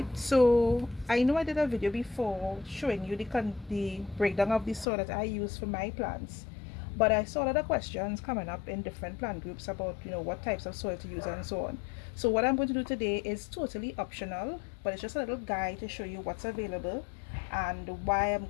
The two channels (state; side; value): drops out; right; at 4.9 s